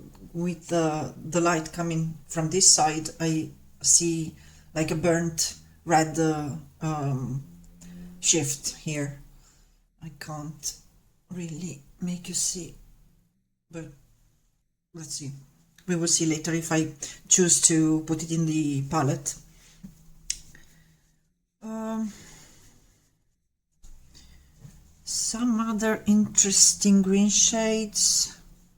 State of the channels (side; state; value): both; identical; correlation 1.00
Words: with the light coming from this side, I see like a burnt red shift here. I can't really make you see, but let's see. We will see later if I choose to put it in the palette. Some other interesting green shades.